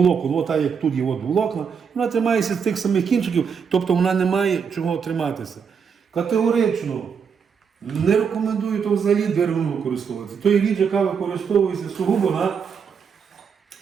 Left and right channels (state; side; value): quieter; left; 6.5 dB